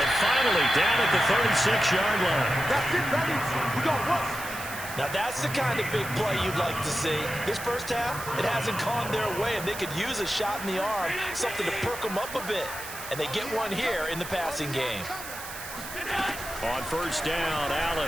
finally down at the 36-yard line. That's it, baby. We got what? Now that's the kind of big play you'd like to see. This first half, it hasn't gone their way, and they could use a shot in the arm, something to perk them up a bit. And they get one here in the passing game. On 1st down,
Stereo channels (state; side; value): noise; right; hiss, 11 dB below the sound